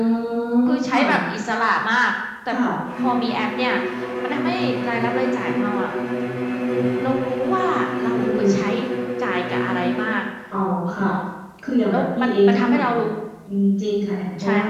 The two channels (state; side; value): identical; both; correlation 1.00